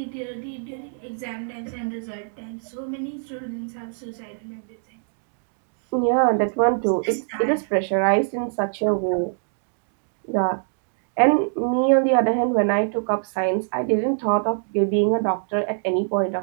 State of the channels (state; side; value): silent; left; 63 dB below the other